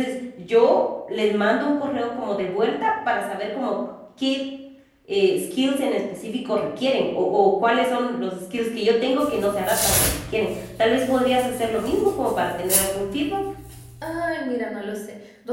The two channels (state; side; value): identical; both; correlation 1.00